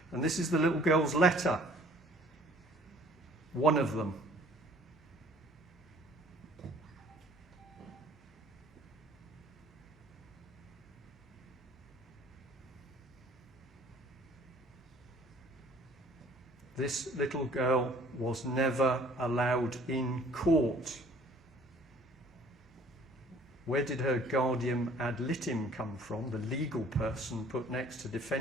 And this is the little girl's letter. One of them. This little girl was never allowed in court. Where did her guardian ad litem come from? The legal person put next to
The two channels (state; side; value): normal; both; correlation 0.54